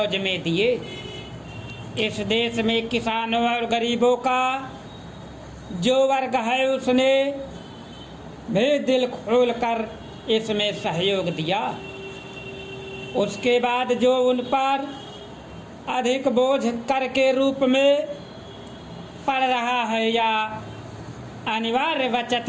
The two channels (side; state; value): both; identical; correlation 1.00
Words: में दिए। इस देश में किसानों और गरीबों का जो वर्ग है उसने भी दिल खोल कर इसमें सहयोग दिया। उसके बाद जो उन पर अधिक बोझ कर के रूप में पड़ रहा है या अनिवार्य बचत